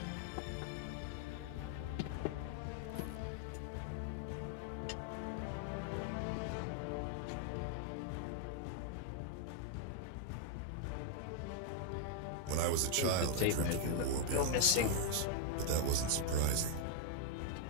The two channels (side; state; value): both; different; correlation 0.00